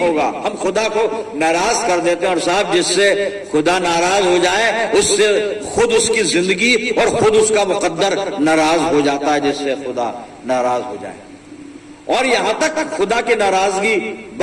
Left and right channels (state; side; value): identical; both; correlation 1.00